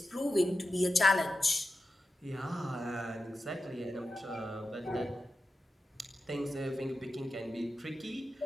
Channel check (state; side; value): normal; both; correlation 0.92